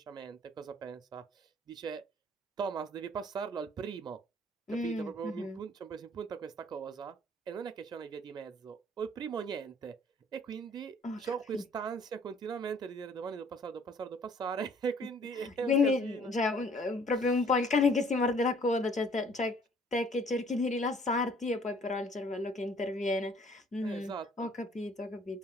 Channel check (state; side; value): normal; both; correlation 0.58